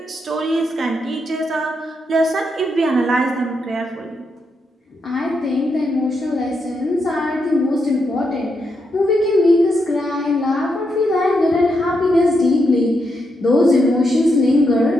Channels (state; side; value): normal; both; correlation 0.82